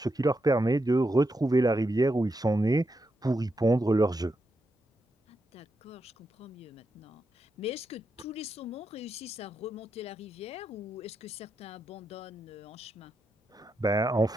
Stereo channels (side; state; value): both; normal; correlation 0.84